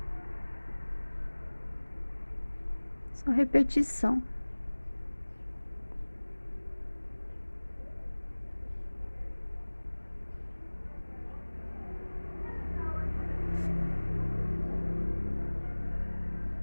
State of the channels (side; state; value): both; inverted; correlation -1.00